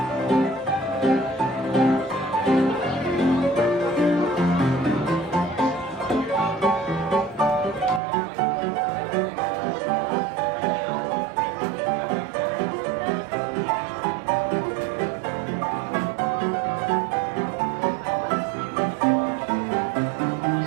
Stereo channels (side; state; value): left; drops out; at 8.0 s